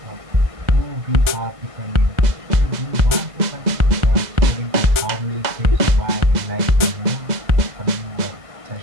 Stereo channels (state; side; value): late; left; 2.0 ms